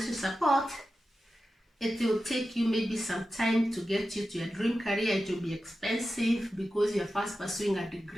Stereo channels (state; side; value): normal; both; correlation 0.92